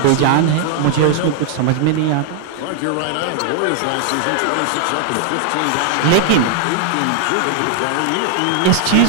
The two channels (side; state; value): both; different; correlation 0.00